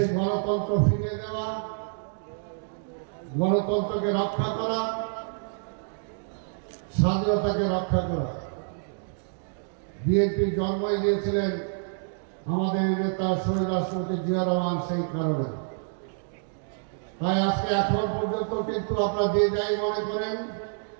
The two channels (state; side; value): silent; left; digital silence